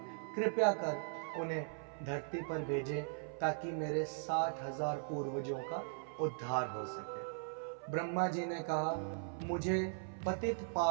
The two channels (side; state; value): left; silent; 52 dB below the other